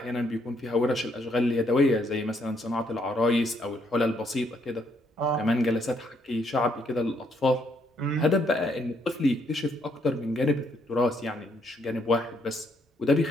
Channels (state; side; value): normal; both; correlation 0.72